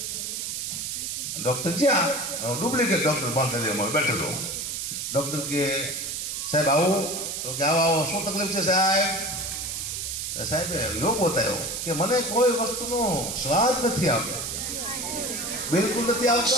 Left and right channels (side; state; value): right; noise; hiss, 4 dB below the sound